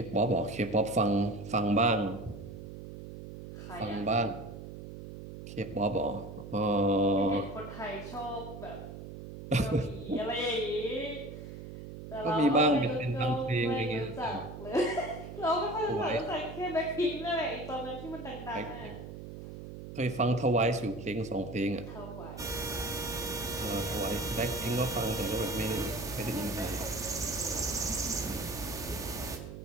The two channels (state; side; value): noise; right; hum, 11 dB below the sound